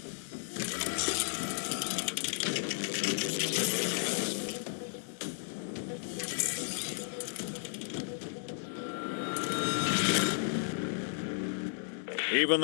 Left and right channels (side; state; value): right; silent; digital silence